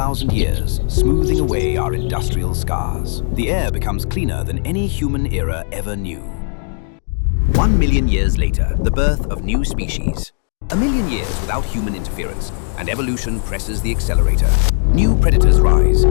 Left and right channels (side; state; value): right; silent; digital silence